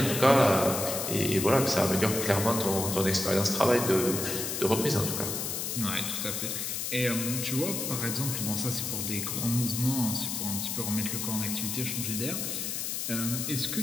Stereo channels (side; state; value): left; noise; hiss, 3 dB below the sound